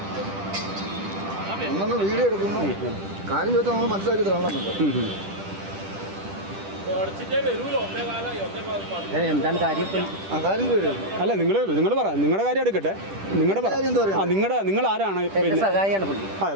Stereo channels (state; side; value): late; left; 10 ms